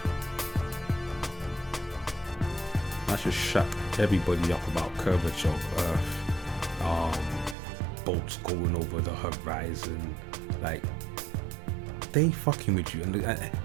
That should shut everybody up about curvature of Earth, bolts going over the horizon. Like, they fucking with you. And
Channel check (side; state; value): left; drops out; at 7.6 s